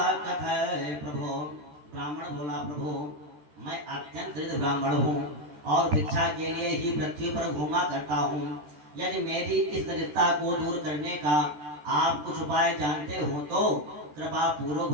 कथय प्रभो। ब्राह्मण बोला, प्रभु मैं अत्यंत दरिद्र ब्राह्मण हूँ और भिक्षा के लिए ही पृथ्वी पर घूमा करता हूँ। यदि मेरी इस दरिद्रता को दूर करने का आप कुछ उपाय जानते हो तो कृपा पूर्वक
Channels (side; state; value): left; late; 13 ms